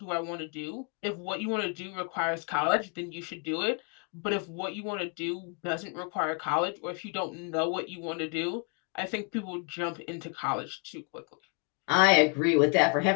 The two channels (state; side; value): quieter; right; 35.8 dB